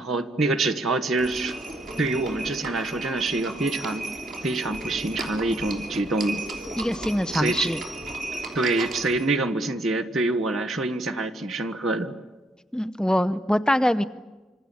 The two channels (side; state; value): both; normal; correlation 0.73